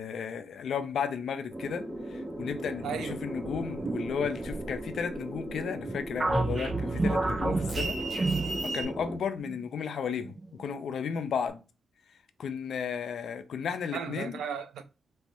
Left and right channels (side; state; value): both; normal; correlation 0.79